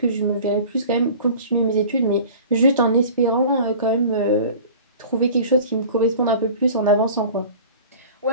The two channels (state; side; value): inverted; both; correlation -0.42